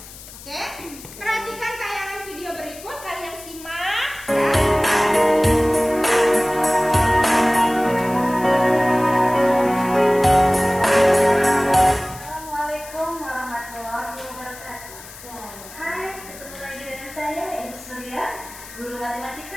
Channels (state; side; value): noise; left; hiss, 17 dB below the sound